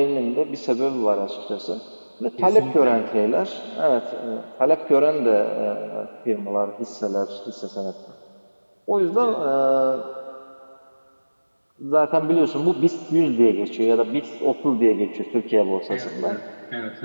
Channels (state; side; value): inverted; both; correlation -1.00